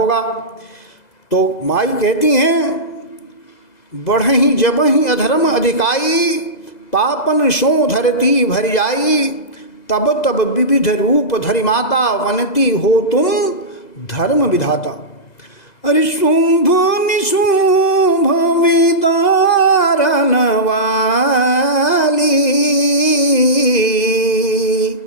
तो माई कहती हैं, बढ़ही जबही अधर्म अधिकाई, पापन सो धरती भर जाई। तब तब विविध रूप धरि माता, वनती हो तुम धर्म विधाता। अरे शुंभ निशुंभ विदारन वाली,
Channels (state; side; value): late; right; 2.0 ms